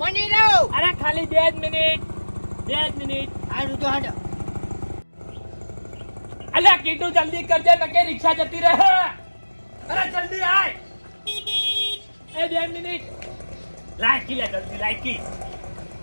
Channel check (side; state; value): both; inverted; correlation -1.00